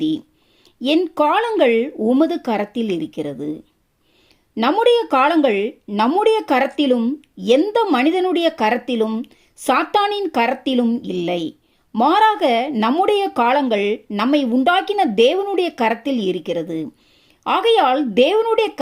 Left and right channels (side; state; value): both; identical; correlation 1.00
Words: என் காலங்கள் உமது கரத்தில் இருக்கிறது. நம்முடைய காலங்கள் நம்முடைய கரத்திலும் எந்த மனிதனுடைய கரத்திலும் சாத்தானின் கரத்திலும் இல்லை. மாறாக நம்முடைய காலங்கள் நம்மை உண்டாக்கின தேவனுடைய கரத்தில் இருக்கிறது. ஆகையால் தேவனுடைய